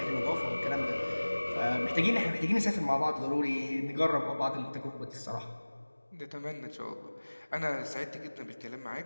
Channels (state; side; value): inverted; both; correlation -1.00